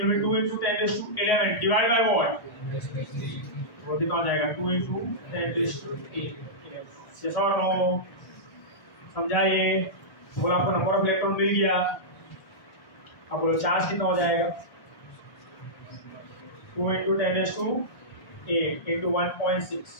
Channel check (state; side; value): late; right; 1.7 ms